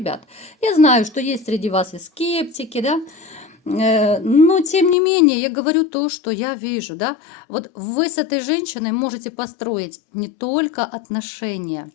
Я знаю, что есть среди вас и скептики, да? Но, тем не менее, я говорю то, что я вижу, да. Вот вы с этой женщиной можете построить не только отношения,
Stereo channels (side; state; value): right; drops out; at 5.0 s